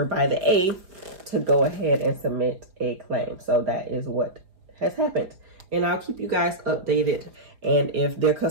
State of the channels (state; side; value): late; left; 4.9 ms